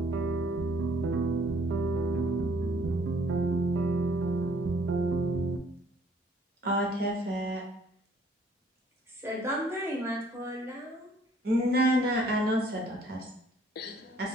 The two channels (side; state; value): both; normal; correlation 0.60